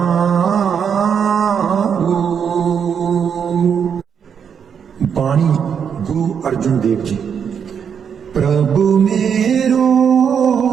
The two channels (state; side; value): quieter; left; 7.4 dB